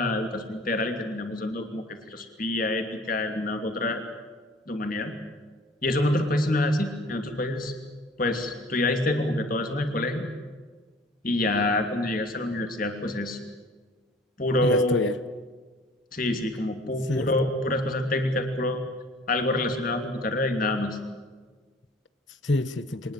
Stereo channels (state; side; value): normal; both; correlation 0.50